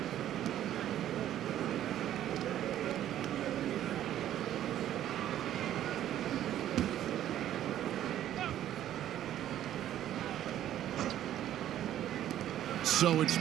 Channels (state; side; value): quieter; left; 11.8 dB